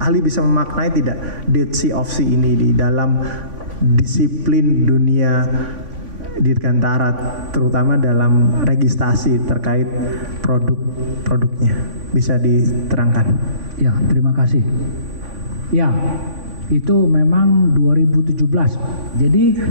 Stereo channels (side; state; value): left; late; 3.5 ms